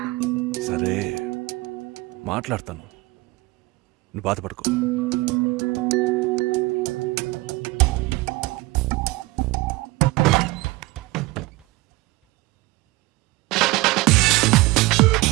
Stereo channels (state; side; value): quieter; left; 21.6 dB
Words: సరే, మాట్లాడతాను, నువ్వు బాధపడుకో.